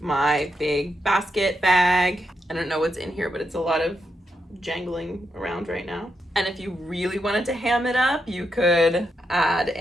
my big basket bag. I don't know what's in here, but it's a lot of jangling around right now. And if you really wanted to ham it up, you could add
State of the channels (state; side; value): normal; both; correlation 0.83